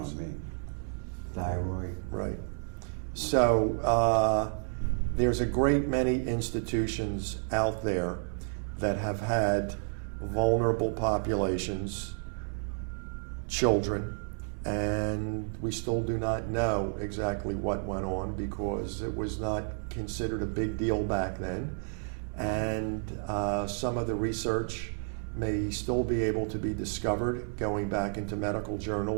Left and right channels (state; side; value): silent; left; 57 dB below the other